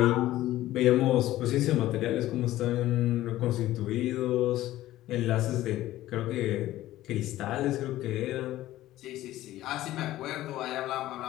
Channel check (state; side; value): quieter; right; 15.1 dB